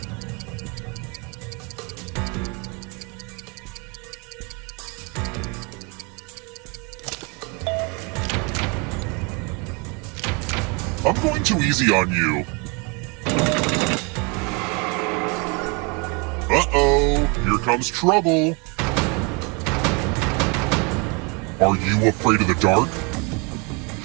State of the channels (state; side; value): quieter; left; 31.2 dB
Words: I'm going too easy on you. Uh-oh, here comes trouble. Are you afraid of the dark?